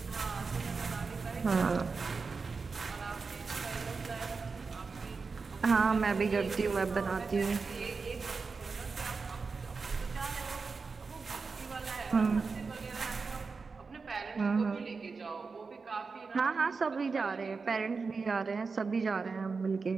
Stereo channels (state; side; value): quieter; left; 4.6 dB